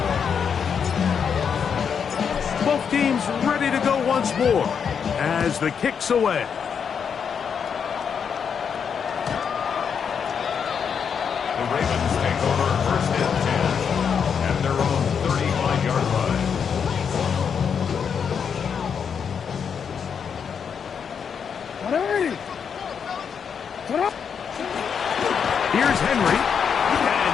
Both teams ready to go once more as the kick's away. The Ravens take over first and 10 at their own 35-yard line. Ready? Get up. Here's Henry, and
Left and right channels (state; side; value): quieter; right; 6.9 dB